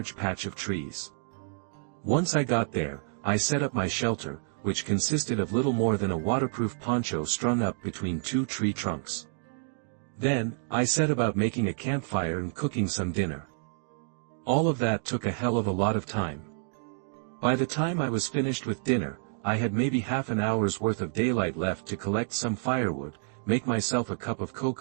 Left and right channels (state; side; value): silent; left; digital silence